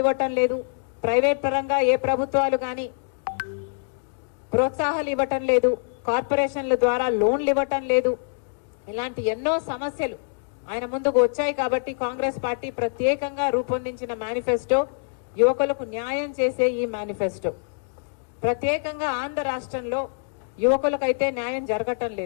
ఇవ్వటం లేదు, ప్రైవేట్ పరంగా ఏ ప్రభుత్వాలు గాని ప్రోత్సాహాలు ఇవ్వటం లేదు, కార్పొరేషన్ల ద్వారా లోన్లు ఇవ్వటం లేదు, ఇలాంటి ఎన్నో సమస్యలు ఆయన ముందుకు వచ్చాయి. కాబట్టి కాంగ్రెస్ పార్టీ ప్రత్యేకంగా రూపొందించిన మేనిఫెస్టో యువకులకు న్యాయం చేసే ఈ మేనిఫెస్టో. ప్రత్యేకంగా ఆంధ్ర రాష్ట్రంలో యువకులకైతే న్యాయం జరగటం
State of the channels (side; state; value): right; silent; digital silence